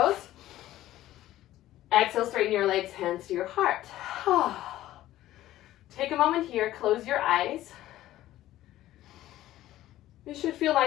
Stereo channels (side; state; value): right; quieter; 14.5 dB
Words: Exhale, straighten your legs, hands to your heart. Take a moment here, close your eyes. You should feel